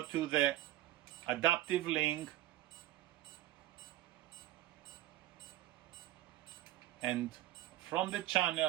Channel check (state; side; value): quieter; left; 14.7 dB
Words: to the adaptive link, and from the